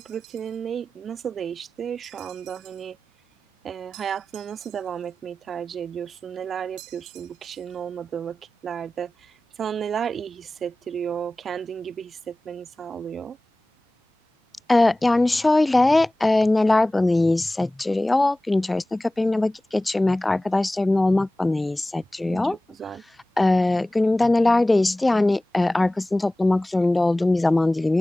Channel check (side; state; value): both; normal; correlation 0.97